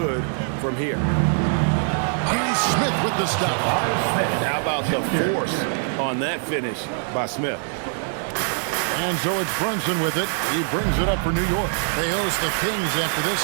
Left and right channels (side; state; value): left; silent; 57 dB below the other